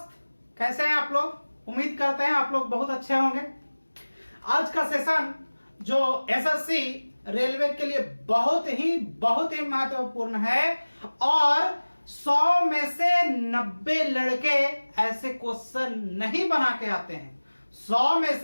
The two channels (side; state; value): both; inverted; correlation -1.00